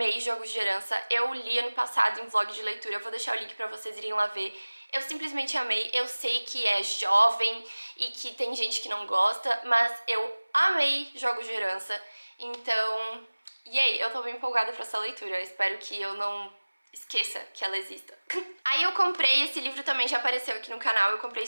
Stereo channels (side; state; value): both; inverted; correlation -1.00